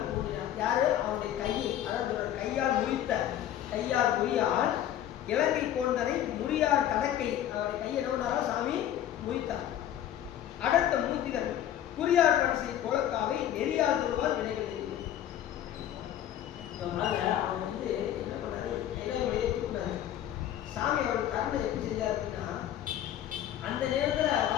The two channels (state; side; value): quieter; right; 11.4 dB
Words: ஊன்றினான். யாரு? அவனுடைய கையை, அதாவது கையால் முறியால் இலங்கை கோந்தனை முறியார் தடக்கை அவருடைய கையை என்ன பண்ணாரா சாமி முறித்தார். அடுத்த மூர்த்திகள் குறியார் பன்சை கோலக்காவை நெறியார் திருவால் வினைகள் எழுதினார். அவன் வந்து என்ன பண்ணாரு? கைலாயமலையை தூக்கினாரு. சாமி அவருடைய கருணை எப்படி செஞ்சார் அப்படின்னா அந்த நேரத்தில்